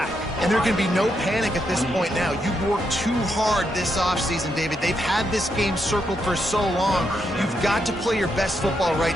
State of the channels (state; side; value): normal; both; correlation 0.81